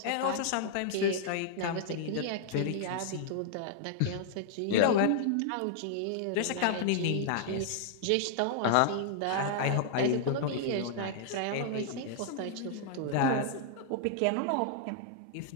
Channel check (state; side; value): different; both; correlation -0.01